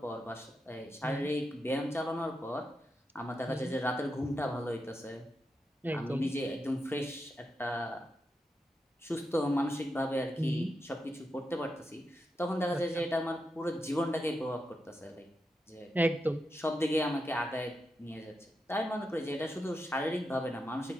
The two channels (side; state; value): both; normal; correlation 0.86